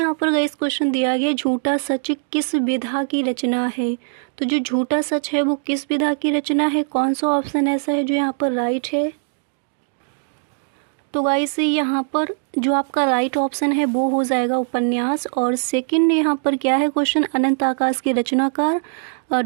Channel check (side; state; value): left; silent; digital silence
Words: पर गाइस क्वेश्चन दिया गया, झूठा सच किस विधा की रचना है। तो जो झूठा सच है वो किस विधा की रचना है, कौन सा ऑप्शन ऐसा है जो यहाँ पर राइट है। तो गाइस यहाँ पर जो आपका राइट ऑप्शन है वो हो जाएगा उपन्यास। और सेकंड यहाँ पर क्या है क्वेश्चन, अनंत आकाश के रचनाकार